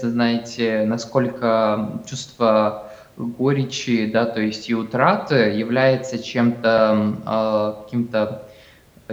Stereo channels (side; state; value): both; identical; correlation 1.00